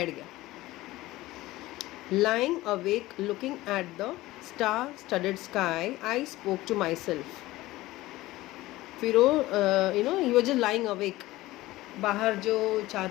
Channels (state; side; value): quieter; right; 17.8 dB